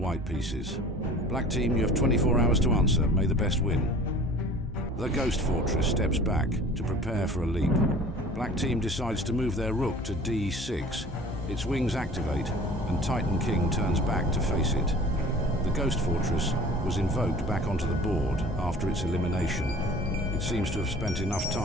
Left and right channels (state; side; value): normal; both; correlation 0.45